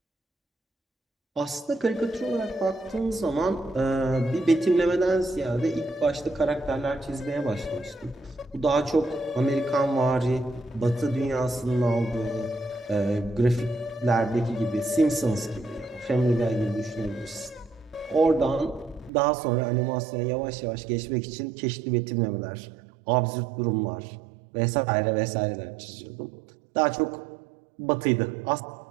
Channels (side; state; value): left; drops out; at 19.1 s